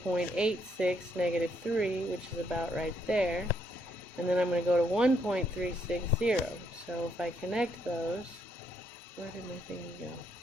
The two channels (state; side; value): normal; both; correlation 0.74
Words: negative 3, which is about right there. And then I'm going to go to 1.360. So if I connect those, where did my thing go?